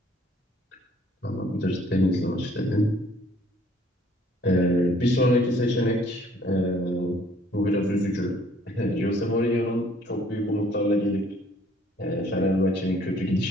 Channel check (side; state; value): both; normal; correlation 0.60